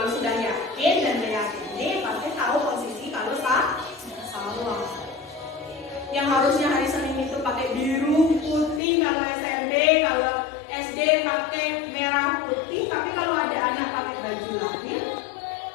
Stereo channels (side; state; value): right; drops out; at 8.8 s